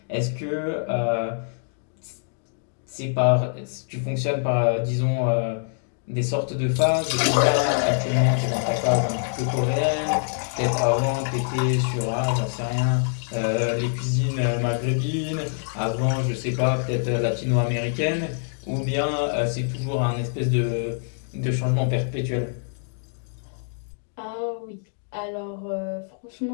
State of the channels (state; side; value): silent; right; digital silence